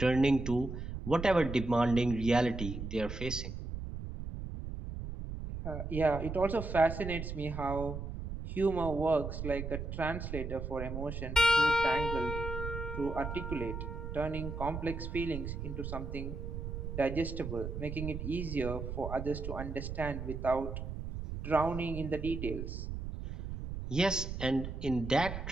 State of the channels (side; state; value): right; noise; rumble, 6 dB below the sound